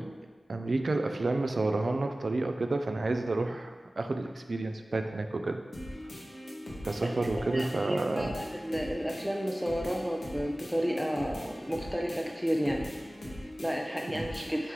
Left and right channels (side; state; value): both; normal; correlation 0.97